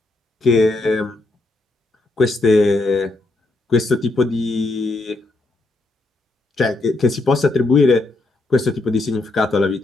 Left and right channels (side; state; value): right; quieter; 3.0 dB